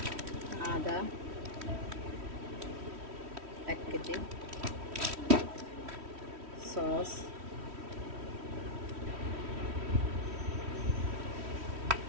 আদা 1 কেজি, সস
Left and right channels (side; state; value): left; late; 3.1 ms